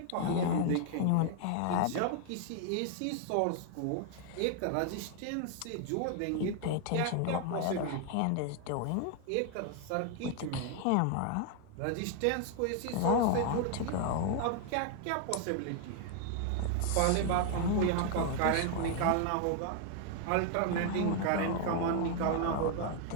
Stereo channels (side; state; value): both; different; correlation 0.00